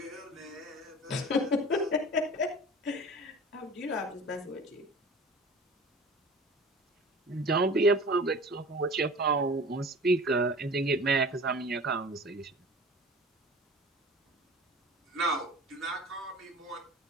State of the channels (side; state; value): both; normal; correlation 0.40